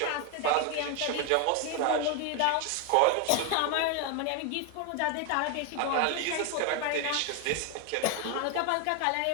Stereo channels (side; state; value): both; different; correlation 0.01